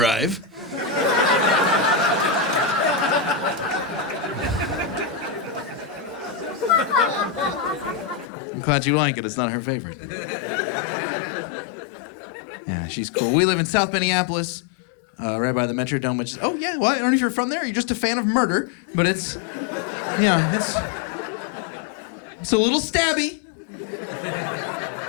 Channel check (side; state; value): right; drops out; at 8.3 s